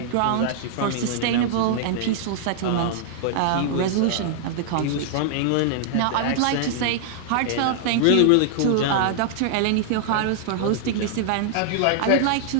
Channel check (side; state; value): both; different; correlation -0.01